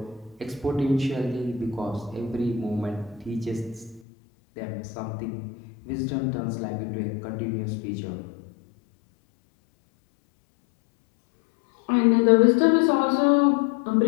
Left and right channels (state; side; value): drops out; right; at 4.0 s